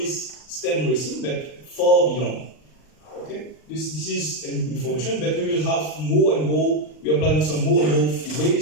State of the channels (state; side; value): late; right; 39 ms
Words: STEM racing, but far beyond. Okay, this is information, but we will have more and more. We are planning some more and more